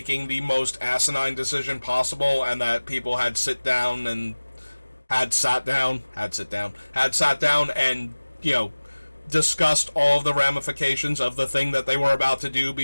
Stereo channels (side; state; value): both; inverted; correlation -1.00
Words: the most asinine decision possible, and that people had sat down and and, you know, discussed all of the ramifications of the thing that they were about to do